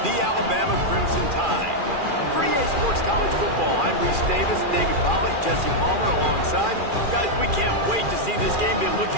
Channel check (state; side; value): late; left; 2.4 ms